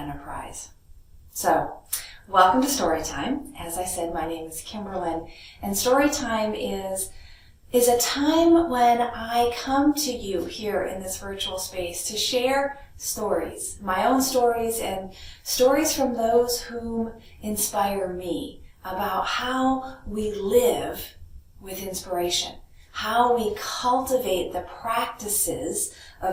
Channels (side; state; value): both; identical; correlation 1.00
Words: So, welcome to Storytime. As I said, my name is Kimberlyn, and Storytime is a time when I come to you here in this virtual space to share stories, my own stories and stories from those whom inspire me about how we live with inspiration, how we cultivate the practices